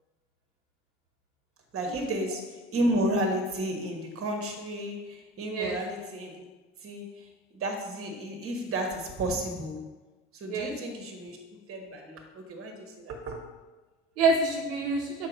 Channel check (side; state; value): both; normal; correlation 0.37